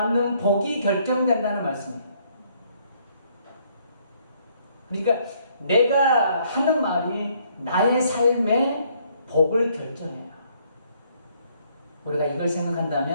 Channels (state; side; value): inverted; both; correlation -0.66